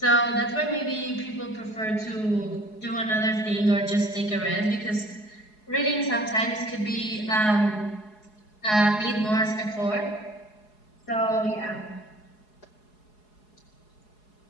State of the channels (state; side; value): late; right; 4.7 ms